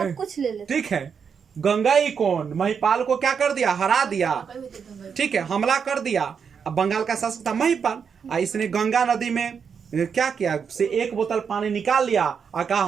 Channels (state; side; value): quieter; left; 6.6 dB